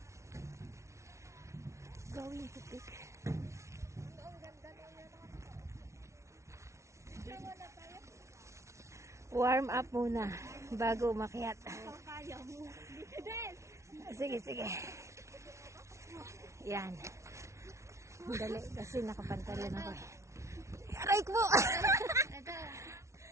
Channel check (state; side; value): late; left; 0.14 ms